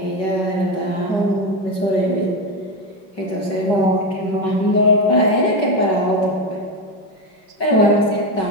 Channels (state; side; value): late; right; 5.4 ms